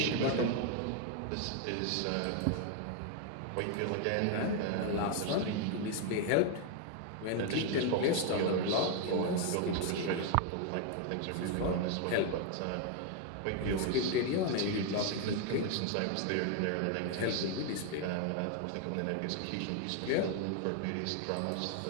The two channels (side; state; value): both; different; correlation 0.00